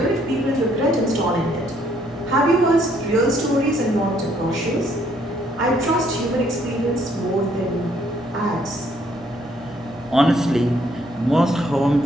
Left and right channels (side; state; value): both; normal; correlation 0.67